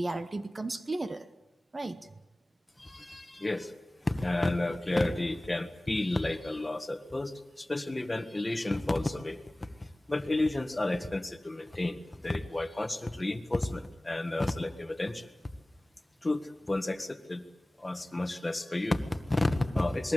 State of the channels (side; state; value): both; normal; correlation 0.98